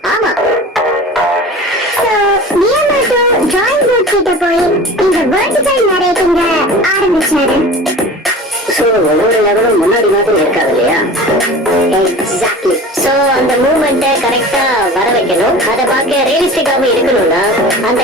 ஆமா. சோ மியாமோட்டோ டிராயிங் போர்ட் கிட்ட போய் இந்த வெர்டிகல் நரேட்டிங்க ஆரம்பிச்சாரு. சோ ஒவ்வொரு லெவலும் முன்னாடி மாதிரி இருக்காது இல்லையா? எக்ஸாக்ட்லி. சோ அந்த மூவ்மெண்ட்டை கரெக்டா வர வைக்கணும். அதை பார்க்க ரியலிஸ்டிக்காவும் இருக்கணும்னா அந்த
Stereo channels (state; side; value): normal; both; correlation 0.38